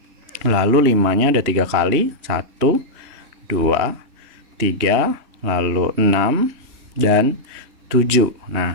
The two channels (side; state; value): left; late; 3.1 ms